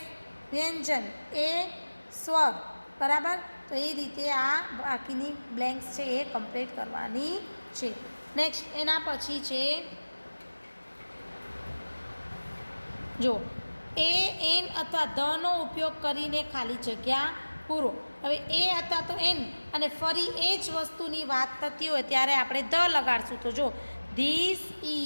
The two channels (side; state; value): both; inverted; correlation -1.00